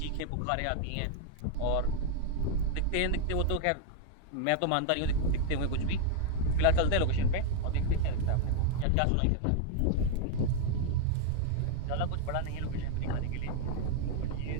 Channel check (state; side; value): different; both; correlation 0.00